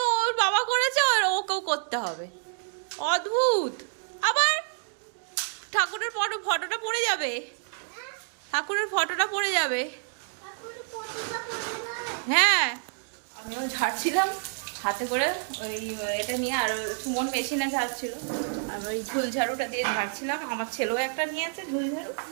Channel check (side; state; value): left; silent; 59 dB below the other